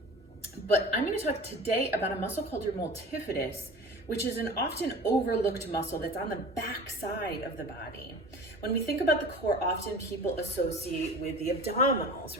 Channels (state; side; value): normal; both; correlation 0.38